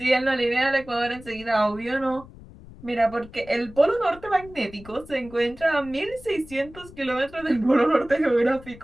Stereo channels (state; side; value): noise; left; rumble, 19 dB below the sound